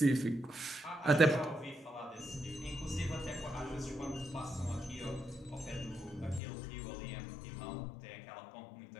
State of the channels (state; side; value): drops out; right; at 6.4 s